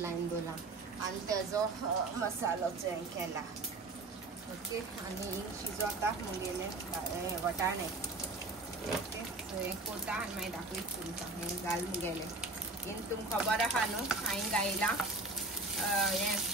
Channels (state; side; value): quieter; left; 3.1 dB